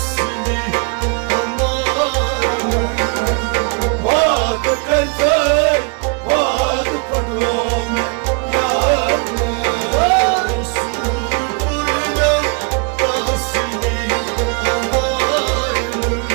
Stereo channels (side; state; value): left; quieter; 35.0 dB